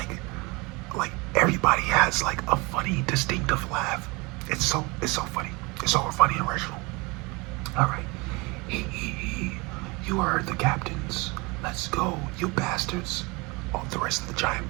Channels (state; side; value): quieter; left; 26.3 dB